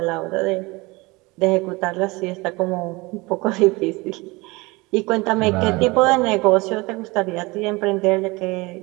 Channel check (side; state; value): left; quieter; 23.9 dB